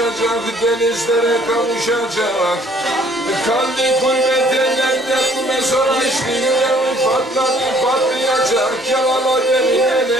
denizlere kavuşacak. Kalbi gurbet ellerde mesora işte, yüreği patlayacak. Yalala beni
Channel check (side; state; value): both; normal; correlation 0.59